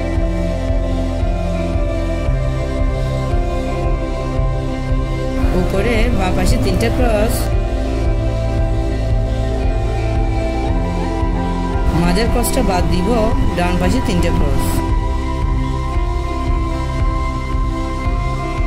উপরে বাঁ পাশে 3টে ক্রস, মাঝের ক্রসটা বাদ দিব, ডান পাশে 3টে ক্রস,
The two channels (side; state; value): both; identical; correlation 1.00